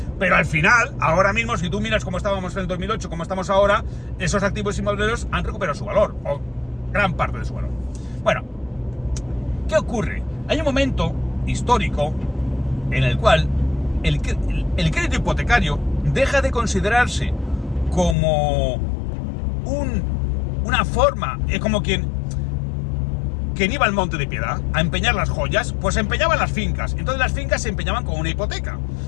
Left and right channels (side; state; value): right; drops out; at 18.2 s